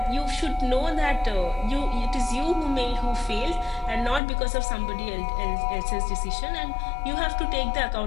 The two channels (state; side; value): drops out; right; at 4.2 s